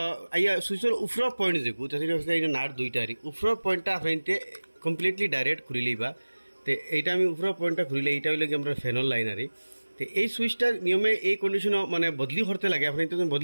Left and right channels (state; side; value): inverted; both; correlation -1.00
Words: আইয়া সুইচের উপর পয়েন্ট দেখো, তাহলে নাট দুইটারি উপর পয়েন্টটা আপনি কমপ্লিটলি ডাইরেক্ট খুলি লইবা। তো এইটা আমি উপর পয়েন্টটা খুলিলে এইটা হইলে কি আমরা ফ্যানের লাইন আরি। তো এই সুইচটা নিয়মে এই কন্ডিশনও মানে বদলি করতে লাগে, আপনি তো